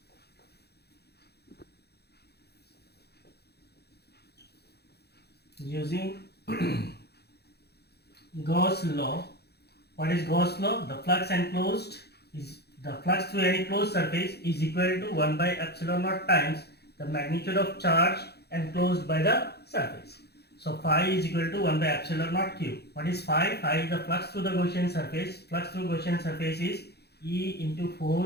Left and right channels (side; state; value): right; late; 0.48 ms